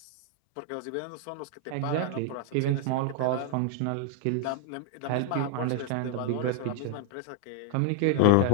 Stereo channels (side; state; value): both; different; correlation 0.00